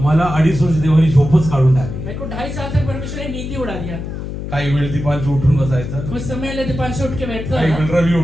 2.5 वर्ष देवानी झोपच काढून टाकली. मेरे को 2.5 साल तक परमेश्वर ने नींद ही उड़ा दिया. काही वेळ दीपांशी उठून बसायचं, कुछ समय दीपांशु उठ के बैठता काही था, वेळ रवी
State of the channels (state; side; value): noise; left; hum, 7 dB below the sound